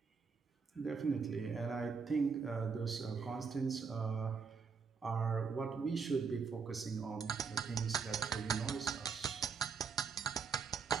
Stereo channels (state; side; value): quieter; left; 5.6 dB